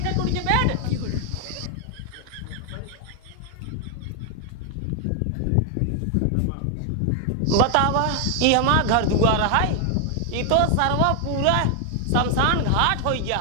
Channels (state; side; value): different; both; correlation 0.00